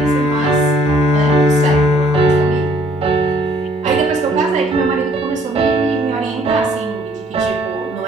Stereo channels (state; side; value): normal; both; correlation 0.61